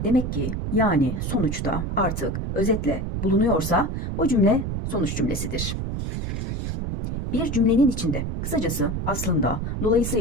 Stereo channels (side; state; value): right; noise; rumble, 3 dB below the sound